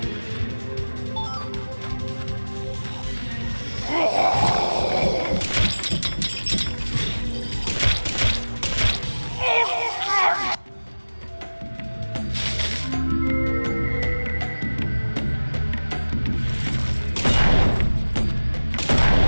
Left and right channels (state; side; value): inverted; both; correlation -1.00